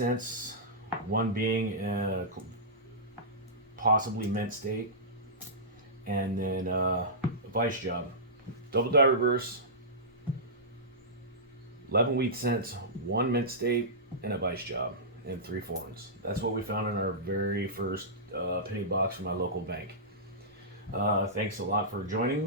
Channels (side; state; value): both; normal; correlation -0.16